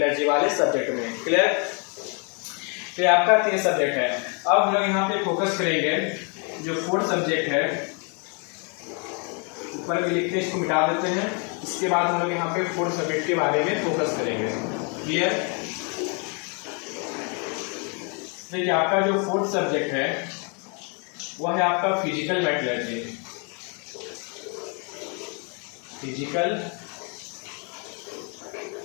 वाले सब्जेक्ट में। क्लियर। तो ये आपका 3 सब्जेक्ट है। अब हम लोग यहाँ पे फोकस करेंगे जो 4th सब्जेक्ट है, ऊपर भी लिखते हैं, इसको मिटा देते हैं। इसके बाद हम लोग यहाँ पे 4th सब्जेक्ट के बारे में फोकस करेंगे। क्लियर? देखिए आपका जो 4th सब्जेक्ट है वह है आपका फिजिकल मेटलर्जी। फिजिकल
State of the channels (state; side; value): quieter; right; 36.5 dB